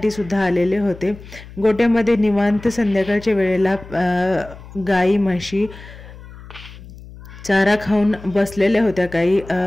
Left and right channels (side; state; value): left; noise; hum, 17 dB below the sound